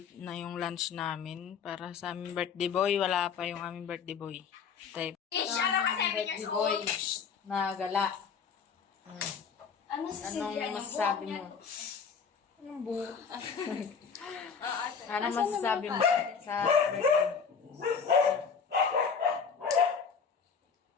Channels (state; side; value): quieter; right; 6.2 dB